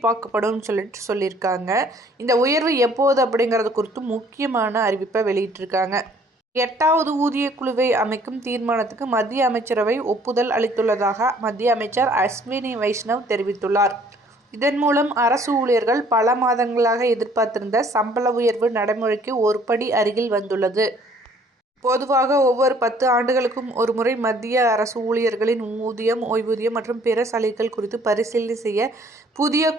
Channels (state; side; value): normal; both; correlation 0.59